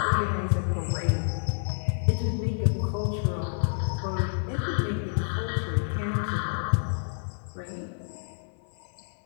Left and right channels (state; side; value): silent; right; 59 dB below the other